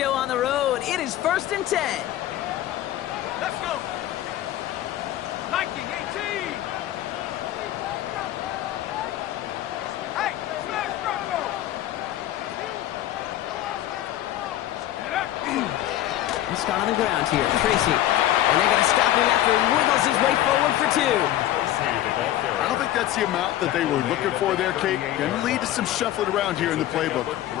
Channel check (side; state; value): right; quieter; 13.4 dB